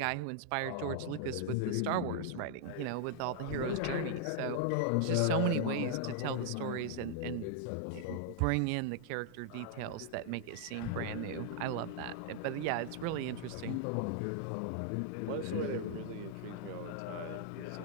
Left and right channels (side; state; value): both; different; correlation -0.01